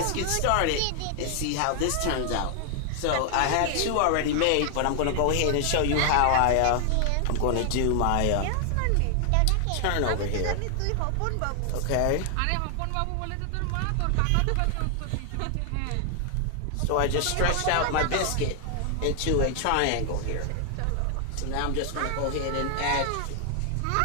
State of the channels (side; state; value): both; different; correlation 0.00